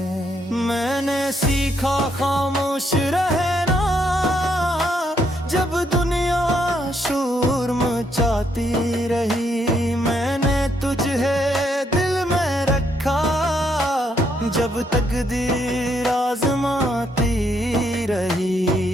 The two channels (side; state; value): both; normal; correlation 0.74